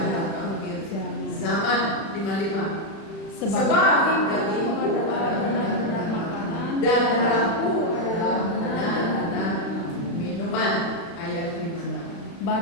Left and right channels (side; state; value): right; late; 36 ms